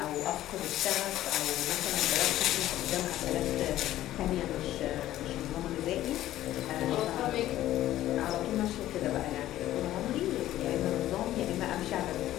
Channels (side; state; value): right; quieter; 13.8 dB